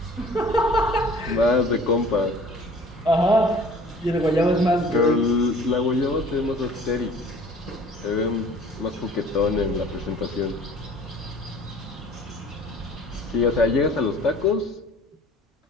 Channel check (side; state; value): both; normal; correlation 0.50